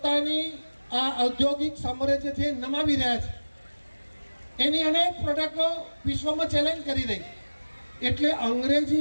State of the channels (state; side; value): inverted; both; correlation -1.00